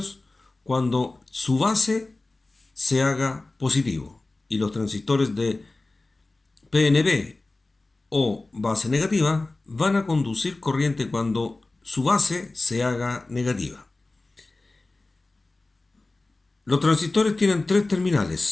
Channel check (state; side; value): quieter; right; 3.1 dB